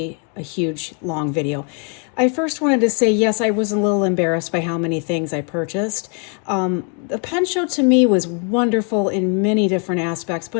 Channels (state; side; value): quieter; right; 39.0 dB